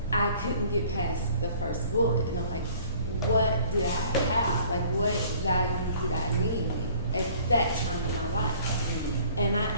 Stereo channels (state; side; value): inverted; both; correlation -0.54